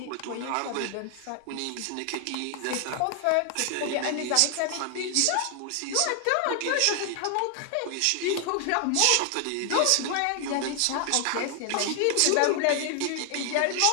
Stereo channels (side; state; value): both; different; correlation 0.00